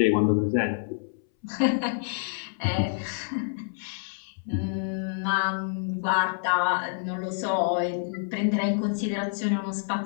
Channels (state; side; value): silent; right; 60 dB below the other